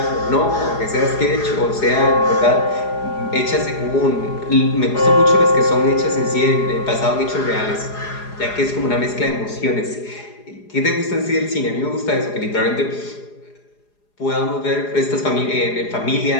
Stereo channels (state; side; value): late; right; 4.8 ms